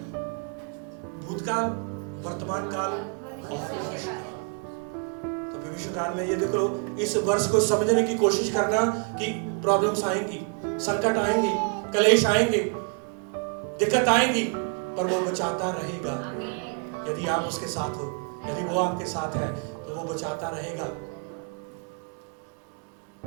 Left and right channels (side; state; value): left; quieter; 39.6 dB